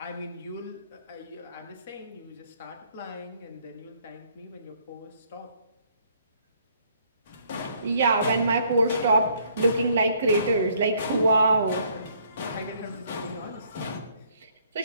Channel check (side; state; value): both; inverted; correlation -0.65